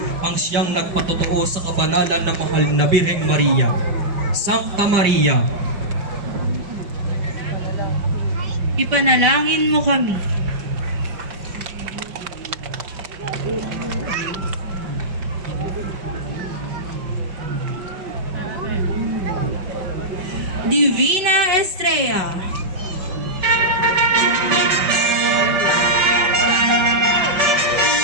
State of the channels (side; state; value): left; late; 5.1 ms